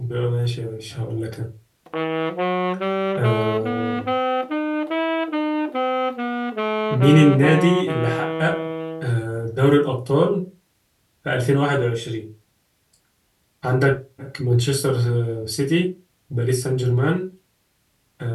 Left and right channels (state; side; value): identical; both; correlation 1.00